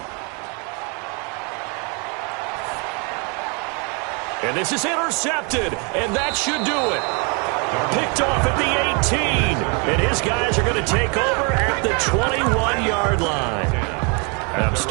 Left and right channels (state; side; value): quieter; left; 33.6 dB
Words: And this is intercepted, and that should do it. Picked off at the 18, and his guys are going to take over at the 21-yard line. And I'm